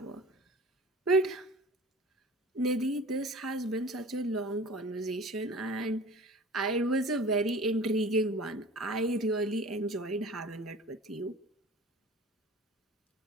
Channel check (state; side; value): normal; both; correlation 0.41